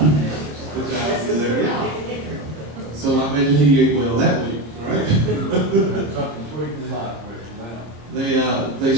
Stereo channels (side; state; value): left; late; 25 ms